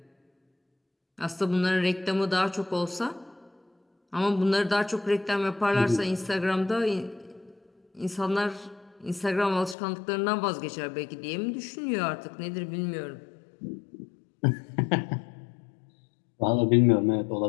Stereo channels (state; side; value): drops out; right; at 9.8 s